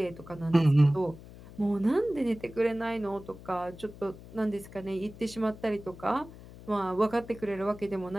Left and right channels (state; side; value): noise; left; hum, 17 dB below the sound